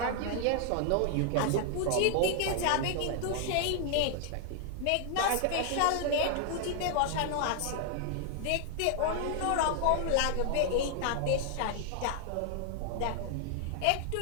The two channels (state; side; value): different; both; correlation 0.00